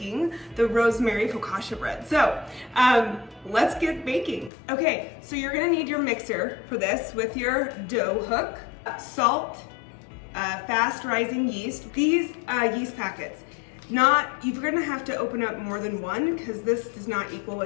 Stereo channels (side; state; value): right; drops out; at 4.5 s